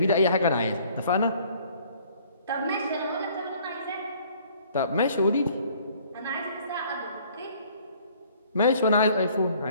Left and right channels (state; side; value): inverted; both; correlation -0.57